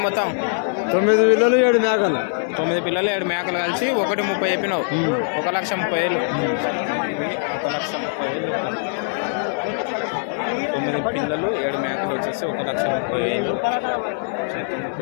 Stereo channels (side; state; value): right; silent; 63 dB below the other